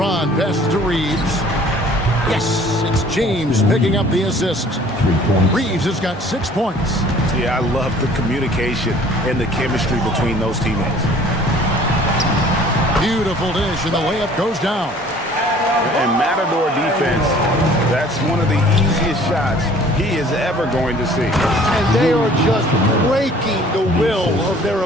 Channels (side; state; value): both; normal; correlation 0.52